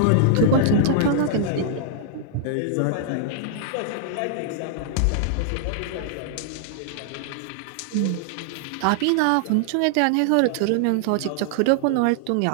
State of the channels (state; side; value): different; both; correlation -0.01